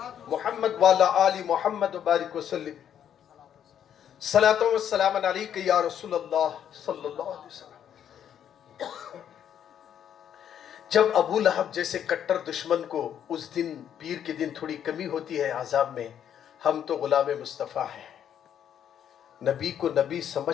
मुहम्मद वाला आली मुहम्मद बारिक वसल्लिम। सलातो व सलाम अलैका या रसूल अल्लाह सल्लल्लाहु अलैहि वसल्लम। जब अबू लहब जैसे कट्टर दुश्मन को उस दिन पीर के दिन थोड़ी कमी होती है आजाब में, हम तो गुलाम मुस्तफ़ा हैं, नबी को नबी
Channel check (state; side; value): quieter; right; 9.4 dB